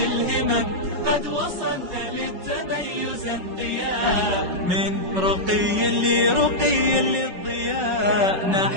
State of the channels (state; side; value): late; left; 5.4 ms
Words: قد وصلت للتميز انقياء. من رقي لرقي للضياء